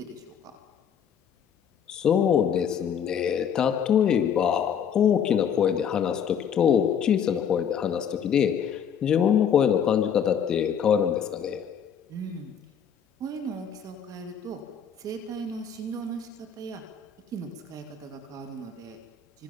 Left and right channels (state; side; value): quieter; right; 7.8 dB